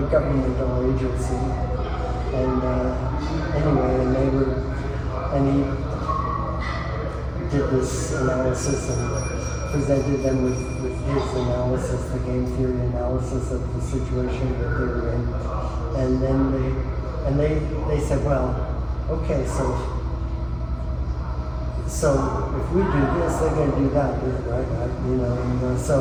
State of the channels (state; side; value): identical; both; correlation 1.00